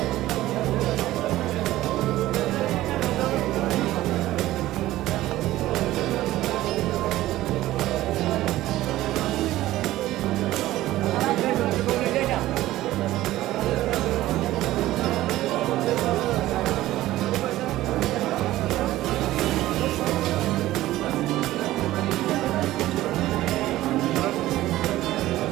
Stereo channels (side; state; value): left; quieter; 15.7 dB